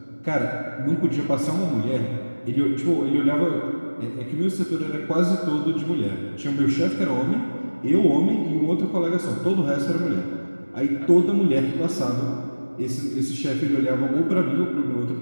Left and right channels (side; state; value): both; inverted; correlation -1.00